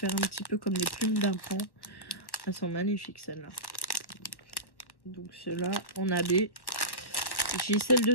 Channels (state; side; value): late; right; 1.1 ms